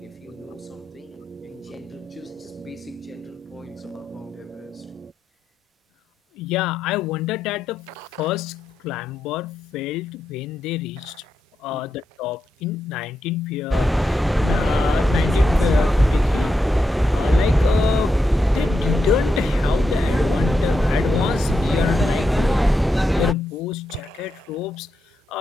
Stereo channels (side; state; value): both; normal; correlation 0.85